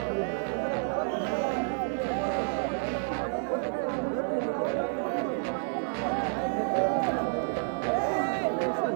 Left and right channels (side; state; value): left; silent; digital silence